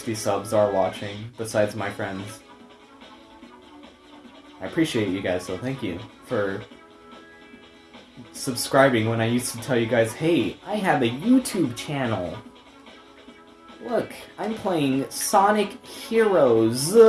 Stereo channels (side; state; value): both; identical; correlation 1.00